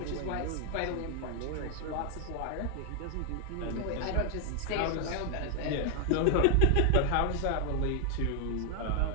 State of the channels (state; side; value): different; both; correlation 0.00